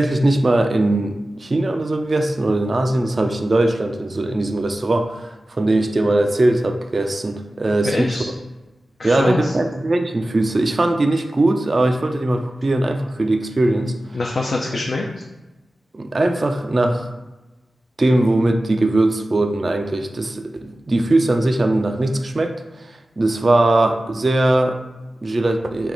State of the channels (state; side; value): normal; both; correlation 0.95